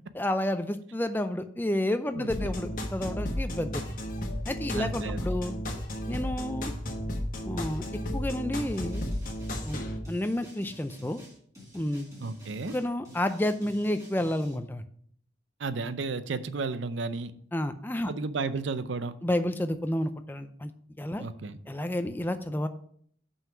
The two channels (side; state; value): both; normal; correlation 0.78